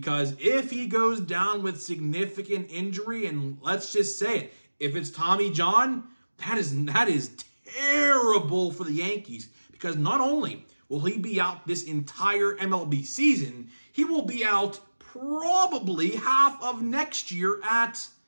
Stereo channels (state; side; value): inverted; both; correlation -1.00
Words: if he goes down with significant injury, and let's just say it, if it's Tommy John, that is terrible for the Yankees. Because not only will he be out this entire MLB season, he will be out probably half of next year at